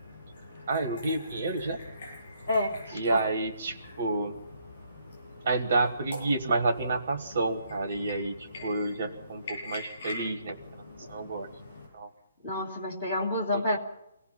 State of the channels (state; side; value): inverted; both; correlation -0.69